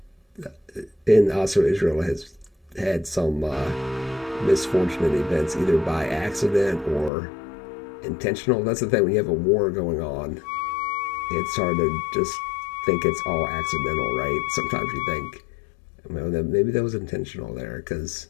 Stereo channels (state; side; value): drops out; right; at 7.1 s